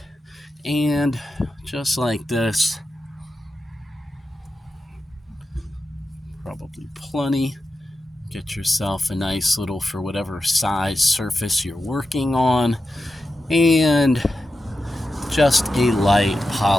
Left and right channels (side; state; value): both; normal; correlation 0.90